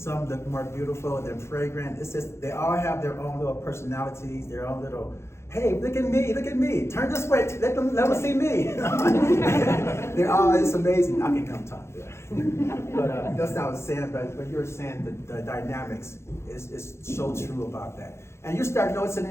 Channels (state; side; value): late; right; 0.13 ms